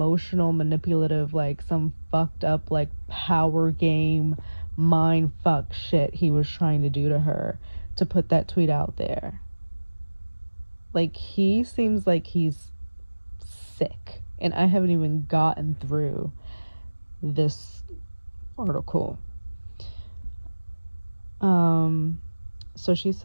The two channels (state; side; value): inverted; both; correlation -1.00